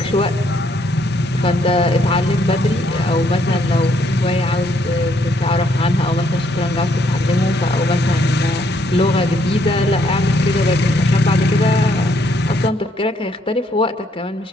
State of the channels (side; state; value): both; normal; correlation 0.70